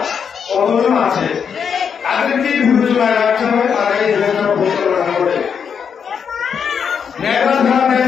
কতজন আছে তাদেরকেই বিবেচনায় রাখতে হবে। তারা এই দেশটা পরিচালনা করে। মেধা ছাড়া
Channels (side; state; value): right; quieter; 7.0 dB